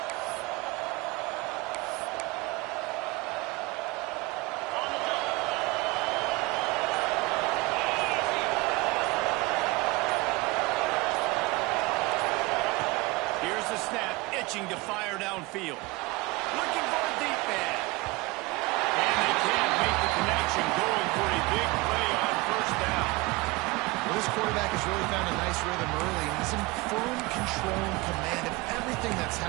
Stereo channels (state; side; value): quieter; left; 23.0 dB